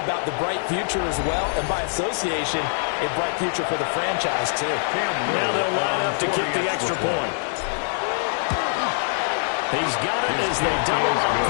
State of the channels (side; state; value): right; silent; digital silence